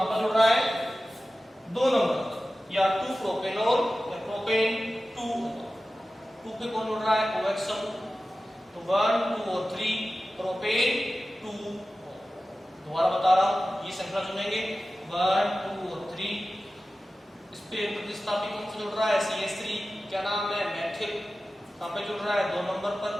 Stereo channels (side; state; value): both; normal; correlation 0.95